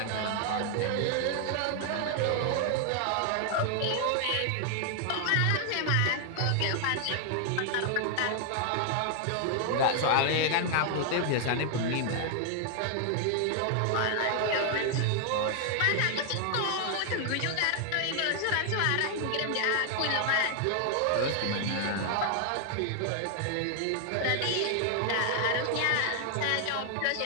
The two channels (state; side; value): different; both; correlation 0.00